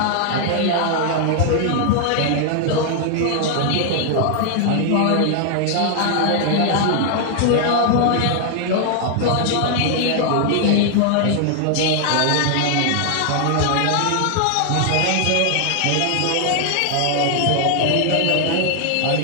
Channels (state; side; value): different; both; correlation 0.00